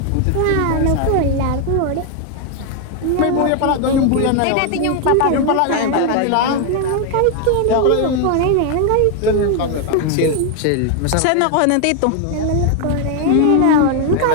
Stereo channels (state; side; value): different; both; correlation 0.00